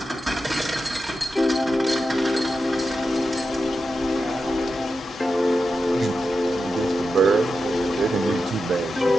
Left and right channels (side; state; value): both; normal; correlation 0.90